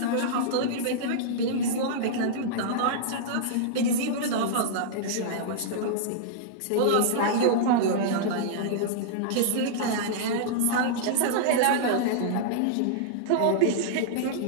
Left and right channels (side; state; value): both; different; correlation -0.02